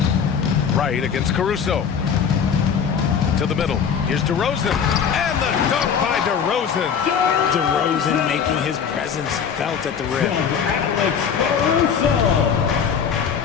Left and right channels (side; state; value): right; quieter; 7.1 dB